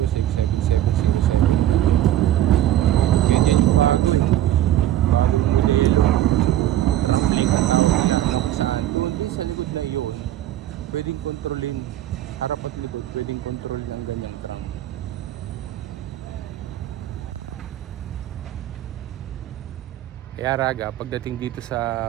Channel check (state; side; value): quieter; left; 12.9 dB